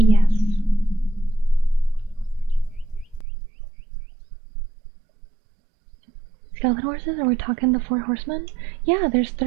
Skeleton horses? Are we talking the 4 horsemen? Yeah, there's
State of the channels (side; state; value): left; drops out; at 3.2 s